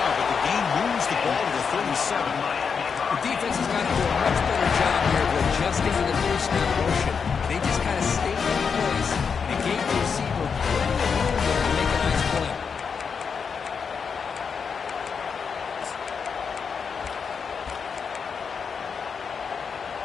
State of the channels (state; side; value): quieter; right; 6.0 dB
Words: but the game moves the ball to the 37. The defense has got to do a much better job here of adjusting to the two-step motion. They just kind of stayed in place and gave the receiver plenty of room there to make a nice play.